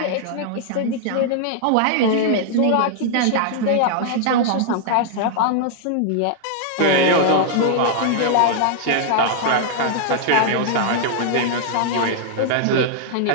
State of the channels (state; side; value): different; both; correlation -0.01